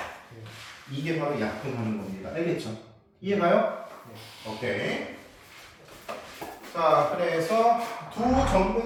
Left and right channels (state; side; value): identical; both; correlation 1.00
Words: 이게 바로 약분하는 겁니다. 알겠죠? 이해가요? 오케이. 자, 그래서 두